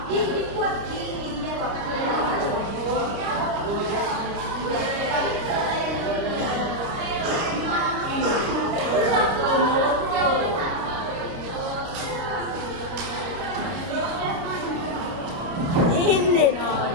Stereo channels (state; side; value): late; left; 30 ms